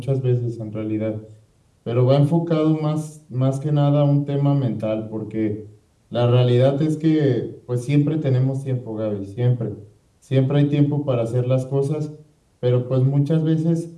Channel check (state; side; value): identical; both; correlation 1.00